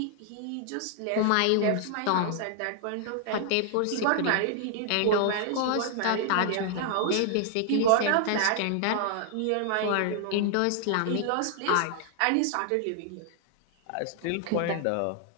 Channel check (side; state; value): both; different; correlation 0.00